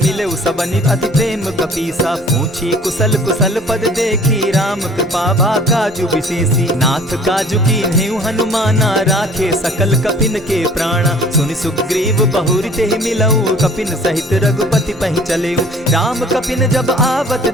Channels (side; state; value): both; normal; correlation 0.51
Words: सबनि अति प्रेम कपीसा। पूछी कुशल कुशल पद देखी, राम कृपा भा काजु विशेषी। नाथ काजु कीन्हेउ हनुमाना, राखे सकल कपिन के प्राणा। सुनि सुग्रीव बहुरि तेहि मिलऊ, कपिन सहित रघुपति पहि चलेऊ। राम कपिन जब आवत